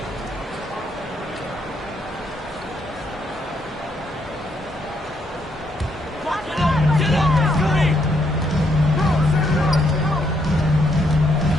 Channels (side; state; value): both; normal; correlation 0.74